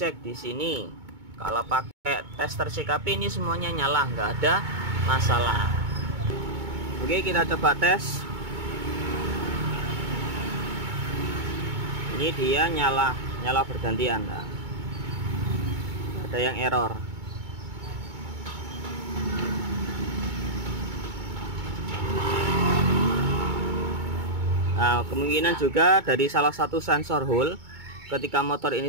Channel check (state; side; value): late; left; 2.2 ms